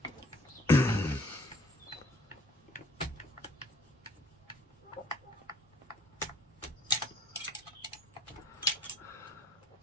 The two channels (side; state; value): both; normal; correlation 0.60